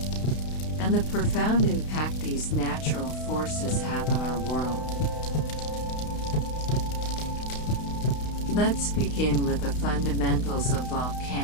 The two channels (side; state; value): right; late; 32 ms